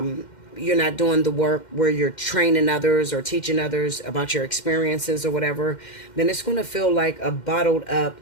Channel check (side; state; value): right; late; 2.1 ms